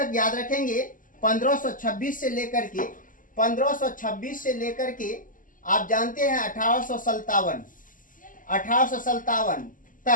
याद रखेंगे, 1526 से लेकर के आप जानते हैं 1857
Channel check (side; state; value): right; late; 0.39 ms